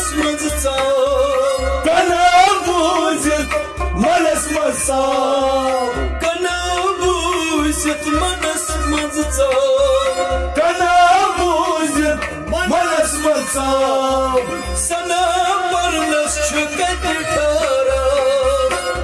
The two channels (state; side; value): identical; both; correlation 1.00